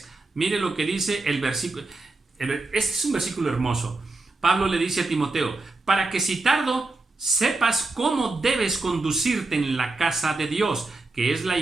Mire lo que dice el versículo. Este es un versículo hermoso. Pablo le dice a Timoteo, para que si tardo, sepas cómo debes conducirte en la casa de Dios, que es la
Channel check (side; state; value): left; quieter; 3.3 dB